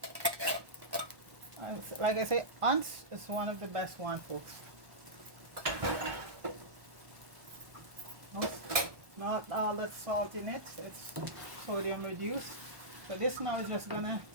Like I say, Once is one of the best one, folks. Not all that salt in it, it's sodium reduced. So this now is just gonna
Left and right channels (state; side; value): late; left; 1.2 ms